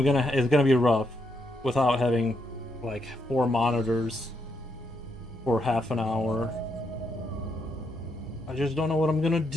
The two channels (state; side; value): normal; both; correlation 0.79